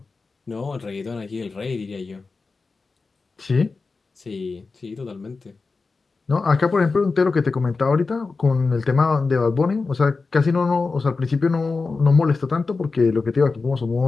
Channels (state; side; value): quieter; right; 4.2 dB